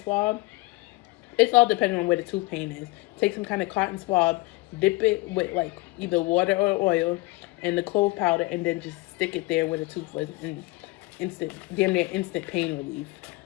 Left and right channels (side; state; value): right; quieter; 22.2 dB